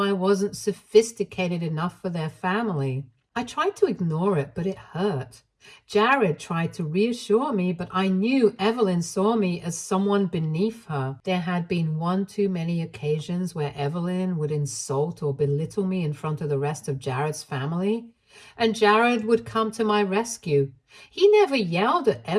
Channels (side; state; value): both; identical; correlation 1.00